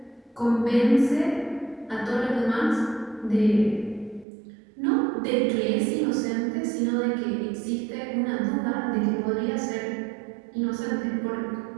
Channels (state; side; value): drops out; left; at 4.2 s